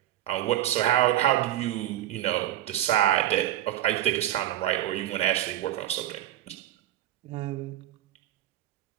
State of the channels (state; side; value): quieter; left; 13.0 dB